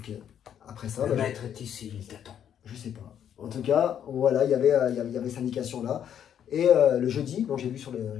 Après ça, le maître est ici, il t'attend. Je sais pas. En tout cas, voilà, il y avait cette indication-là. Et le jeudi, donc j'ai vu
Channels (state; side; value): quieter; right; 9.3 dB